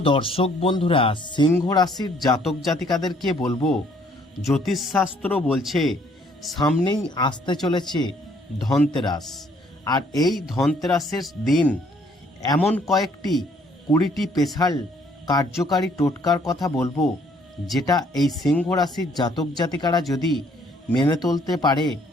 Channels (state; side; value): normal; both; correlation 0.64